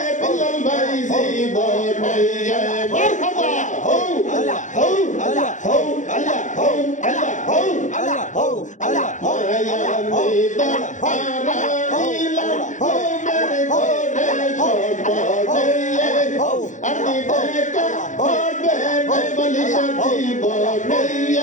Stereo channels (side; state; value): right; late; 0.36 ms